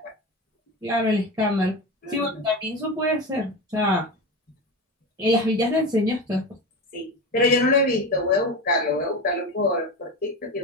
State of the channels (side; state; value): both; normal; correlation 0.23